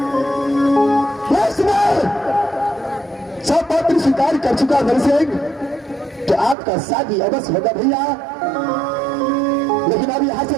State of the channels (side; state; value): left; drops out; at 6.6 s